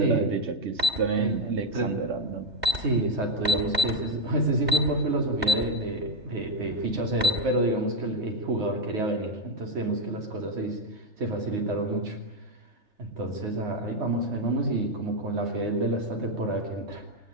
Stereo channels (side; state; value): left; late; 3.3 ms